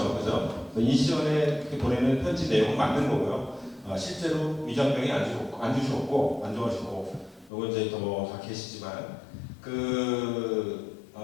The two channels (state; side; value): drops out; right; at 7.5 s